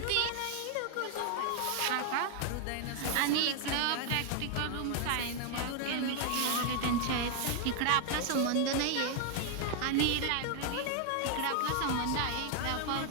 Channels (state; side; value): different; both; correlation 0.00